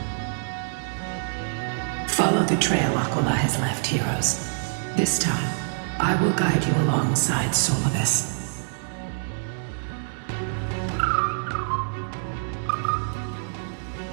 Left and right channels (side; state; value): left; silent; digital silence